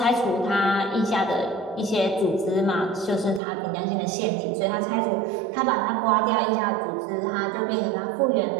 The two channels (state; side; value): drops out; left; at 3.4 s